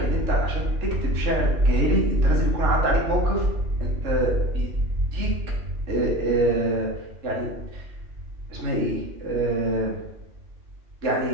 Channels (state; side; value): late; left; 3.4 ms